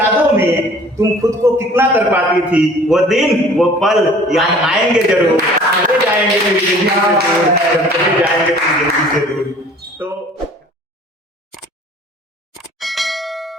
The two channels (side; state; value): both; normal; correlation 0.49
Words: में तुम खुद को कितना तड़पाती थी, वो दिन वो पल याद आएंगे जरूर, चले जाएंगे तेरी जिंदगी से दूर,